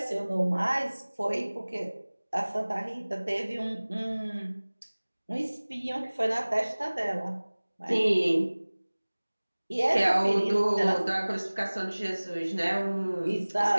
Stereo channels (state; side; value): inverted; both; correlation -1.00